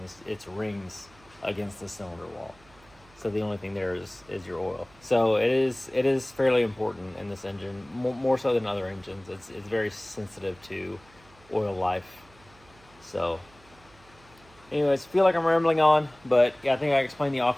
it's rings against the cylinder wall. So the only thing there is your oil. So it is fairly important in this engine, more so than other engines. It's very sensitive to oil life. So anyways, feel like I'm rambling on, but yeah, I think I explained the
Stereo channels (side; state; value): right; noise; hum, 27 dB below the sound